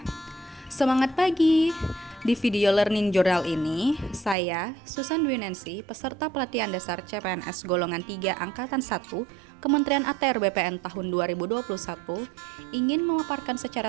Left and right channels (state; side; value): drops out; left; at 4.4 s